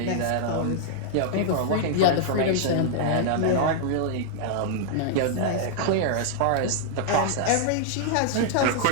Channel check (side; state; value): both; different; correlation -0.01